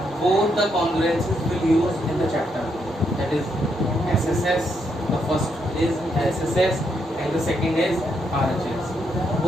both the congruencies will use in the chapter, that is SSS. The first is SSS and the second is RHS.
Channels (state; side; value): normal; both; correlation 0.78